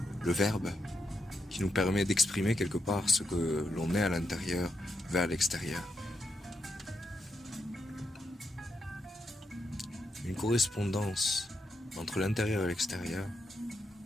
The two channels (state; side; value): normal; both; correlation 0.82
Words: le verbe, qui nous permet d'exprimer quelque part ce que l'on est à l'intérieur vers l'extérieur. Une correspondance entre l'intérieur et l'extérieur